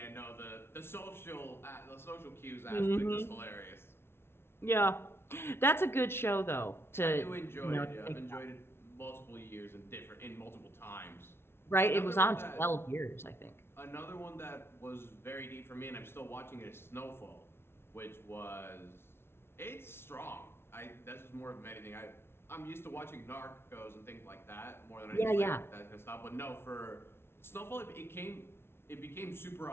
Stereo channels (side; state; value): right; late; 0.12 ms